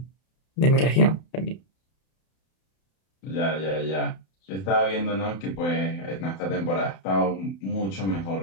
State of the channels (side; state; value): right; late; 31 ms